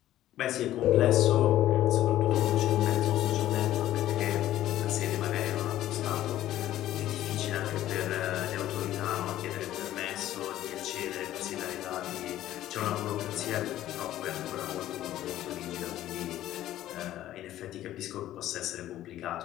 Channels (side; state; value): right; quieter; 13.5 dB